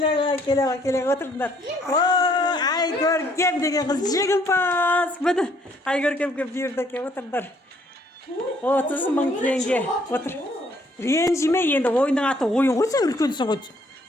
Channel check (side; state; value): both; normal; correlation 0.65